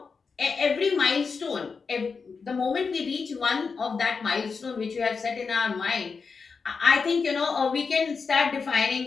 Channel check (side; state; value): right; quieter; 5.1 dB